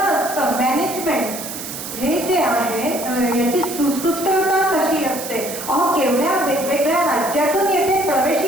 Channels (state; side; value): noise; right; hiss, 8 dB below the sound